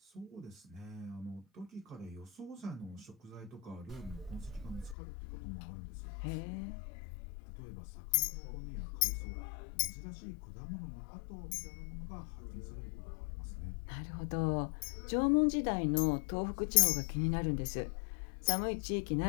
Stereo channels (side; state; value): right; drops out; at 5.0 s